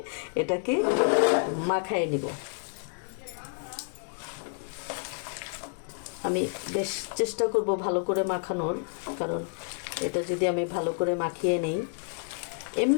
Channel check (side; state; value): right; silent; 58 dB below the other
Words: এটাকে মাখায় নিব। আমি বেশ চেষ্টা করব ভালো করে মাখানোর, কারণ এটা যদি আমি ভালো করে মাখিয়ে নেই।